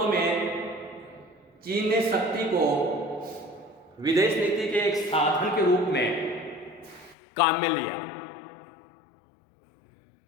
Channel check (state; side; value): drops out; right; at 7.2 s